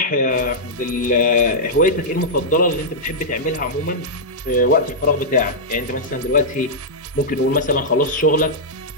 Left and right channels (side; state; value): both; normal; correlation -0.09